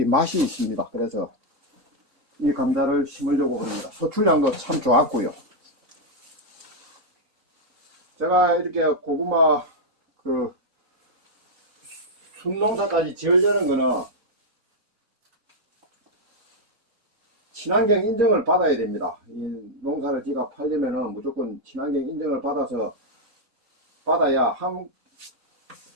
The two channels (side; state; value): both; normal; correlation -0.01